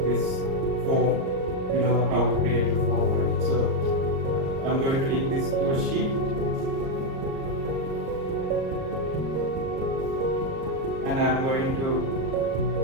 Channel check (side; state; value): left; late; 38 ms